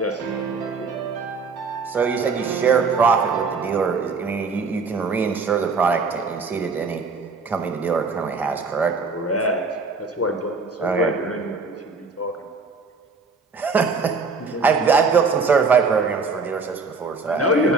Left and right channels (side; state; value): left; quieter; 4.4 dB